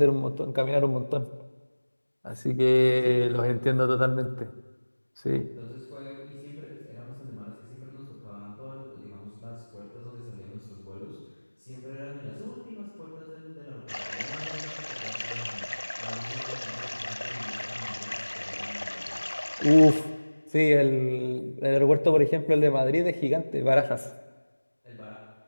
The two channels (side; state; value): both; inverted; correlation -1.00